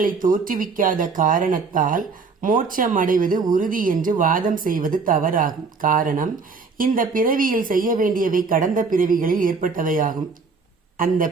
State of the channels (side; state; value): left; quieter; 4.7 dB